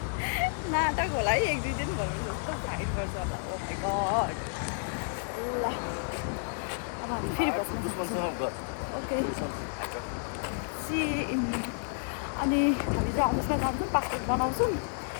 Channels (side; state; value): right; silent; digital silence